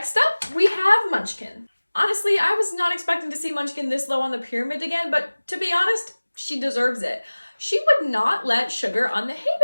up, we have Munchkin. Honestly, I was not expecting to see Munchkin this low on the pyramid again, but to be honest, she deserves it. She would not let Sugar on the hay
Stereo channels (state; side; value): inverted; both; correlation -1.00